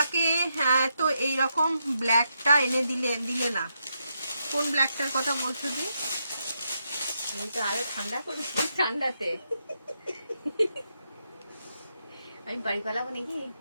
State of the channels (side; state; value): both; inverted; correlation -0.82